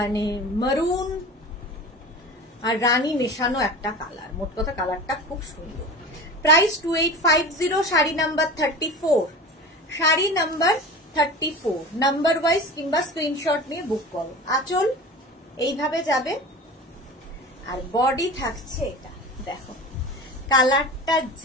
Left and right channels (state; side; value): normal; both; correlation 0.34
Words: মারুন আর রানী মেশানো একটা কালার, মোট কথা কালারটা খুব সুন্দর। Price 2850। Sari number 34, sari number 34 number wise কিংবা স্ক্রিনশট নিয়ে বুক করো। আঁচল এইভাবে যাবে, আর বডি থাকছে এটা। দেখো কালারটা